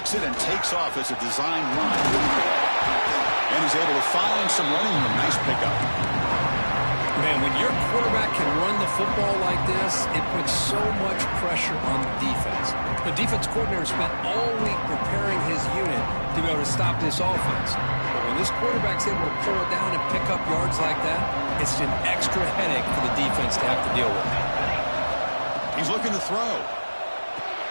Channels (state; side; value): inverted; both; correlation -1.00